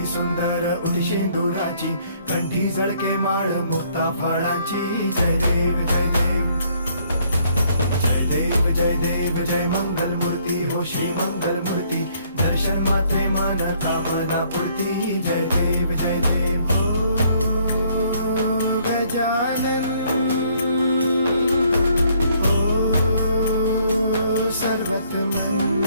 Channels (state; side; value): inverted; both; correlation -0.65